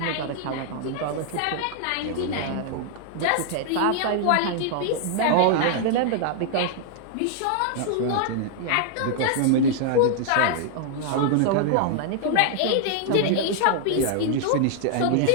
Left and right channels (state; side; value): different; both; correlation 0.00